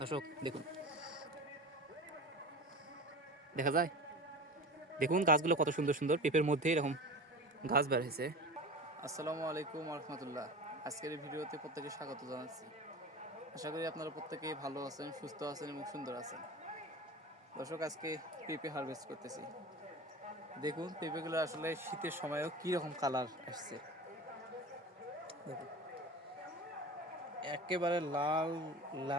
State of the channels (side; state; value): both; normal; correlation 0.33